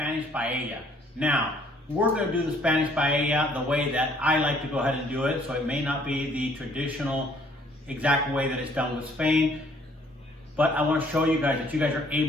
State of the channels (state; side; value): normal; both; correlation 0.62